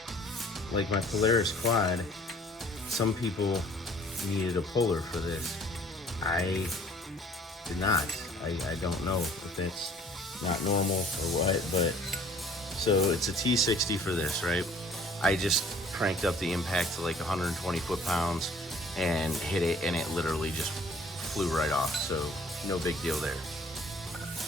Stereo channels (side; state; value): both; normal; correlation 0.55